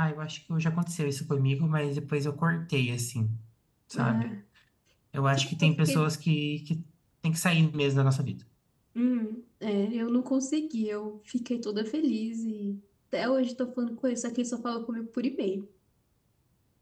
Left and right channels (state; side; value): identical; both; correlation 1.00